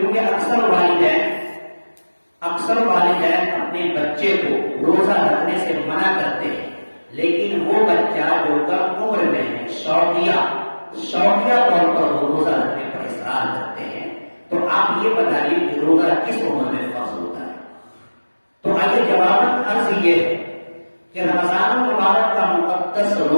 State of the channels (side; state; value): both; inverted; correlation -1.00